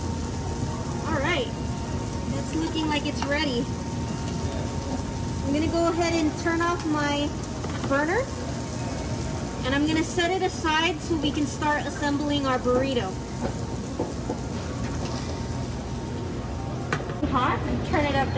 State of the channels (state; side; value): identical; both; correlation 1.00